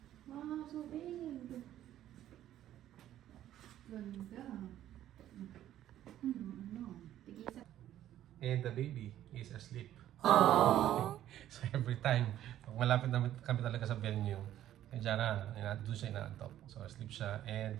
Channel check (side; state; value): left; quieter; 12.3 dB